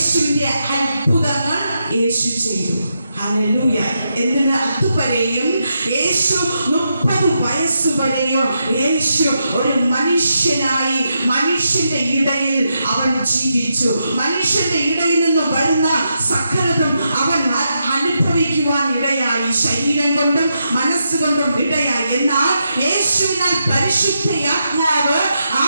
അത്ഭുതങ്ങൾ യേശു ചെയ്തു. ഹല്ലേലൂയ. എന്തിന്? അതുവരെയും യേശു 30 വയസ്സുവരെയും യേശു ഒരു മനുഷ്യനായി മനുഷ്യന്റെ ഇടയിൽ അവൻ ജീവിച്ചു. മനുഷ്യന്റെ ഇടയിൽ നിന്ന് വരുന്ന സകലതും അവൻ അനുഭവിക്കുവാൻ ഇടയായി. ശരീരം കൊണ്ടും മനസ്സുകൊണ്ടും ഇടയായി. എന്നാൽ യേശുവിനാൽ പരിശുദ്ധാത്മാവ്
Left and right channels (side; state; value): both; inverted; correlation -0.84